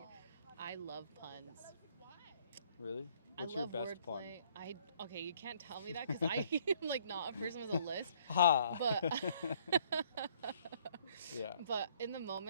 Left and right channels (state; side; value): inverted; both; correlation -0.62